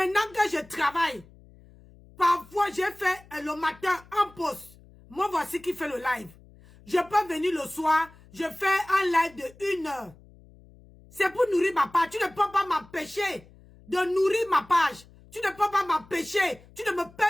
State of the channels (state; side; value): noise; left; hum, 24 dB below the sound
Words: que je travaille, parfois j'ai fait le matin en pause. Moi voici qui fait le live. Je peux venir le soir, je fais un live de 1 heure. C'est pour nourrir ma page. Tu ne peux pas m'empêcher de nourrir ma page. Tu ne peux pas m'empêcher. Tu ne me